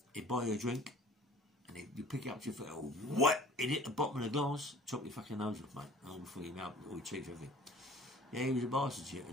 he'd buy you a drink, and And you pick it up to your foot, oh, what? It hit the bottom of the glass, chop your fucking nose off, mate. All before your mouth, all your teeth, everything. Yeah, he was a bastard,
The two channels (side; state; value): both; normal; correlation 0.48